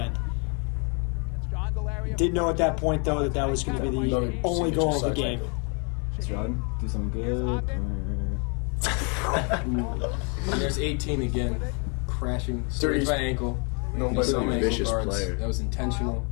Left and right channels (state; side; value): quieter; right; 36.2 dB